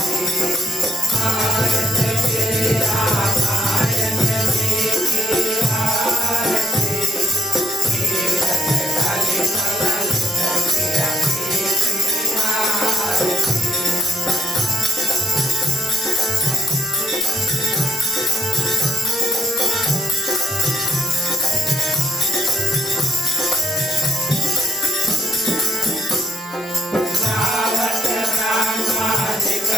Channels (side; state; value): both; normal; correlation 0.70